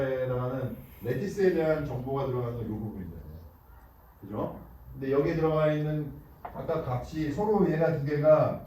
해당하는 레티스에 대한 정보가 들어가는 건 요 부분이잖아요. 그죠? 근데 여기에 들어가 있는 각각 값이 서로 얘가 두 개가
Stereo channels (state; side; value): identical; both; correlation 1.00